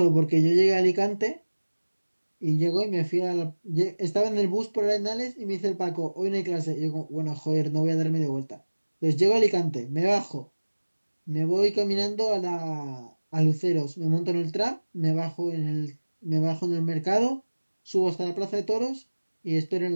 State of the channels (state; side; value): inverted; both; correlation -1.00